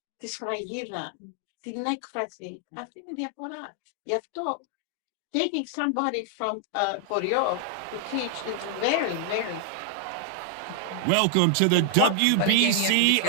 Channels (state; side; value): different; both; correlation 0.00